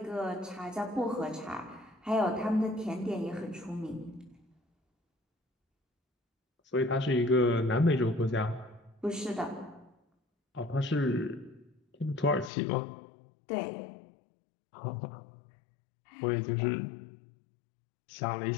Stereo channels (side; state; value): right; drops out; at 12.5 s